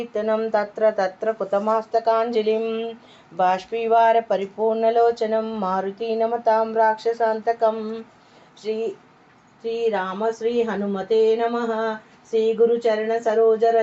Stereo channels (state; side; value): identical; both; correlation 1.00